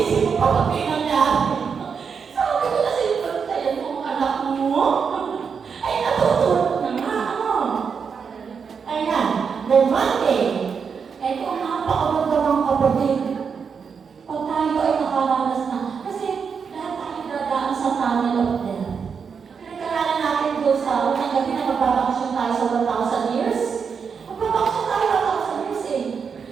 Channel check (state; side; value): quieter; left; 6.2 dB